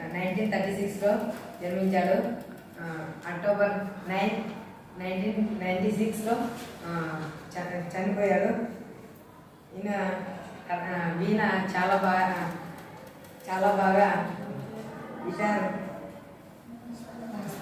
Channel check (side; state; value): both; identical; correlation 1.00